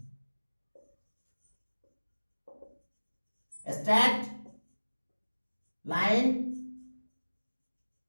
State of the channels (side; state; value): both; inverted; correlation -1.00